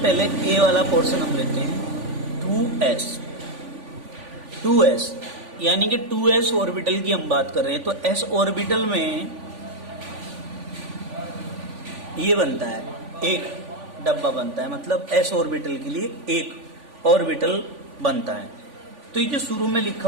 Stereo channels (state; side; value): late; left; 3.5 ms